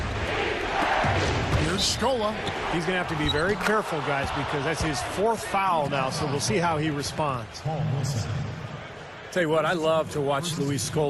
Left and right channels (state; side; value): identical; both; correlation 1.00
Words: Here's Scola. He's going to have to be very careful, guys, because that's his fourth foul now, so we'll see how he responds. Tell you what, I love to watch Luis